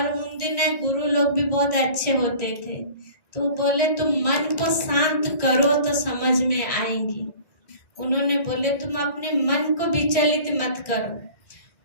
उन दिन गुरु लोग भी बहुत अच्छे होते थे, तो बोले तुम मन को शांत करो तो समझ में आएंगी। उन्होंने बोले तुम अपने मन को विचलित मत करो,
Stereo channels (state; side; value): late; right; 1.6 ms